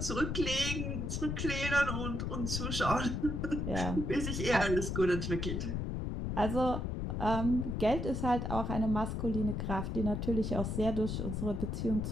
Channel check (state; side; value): noise; left; rumble, 2 dB below the sound